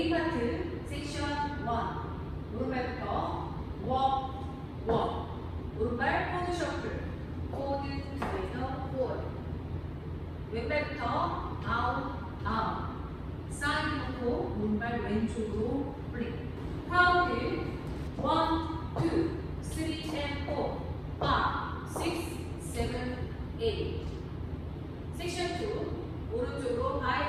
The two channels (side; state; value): both; identical; correlation 1.00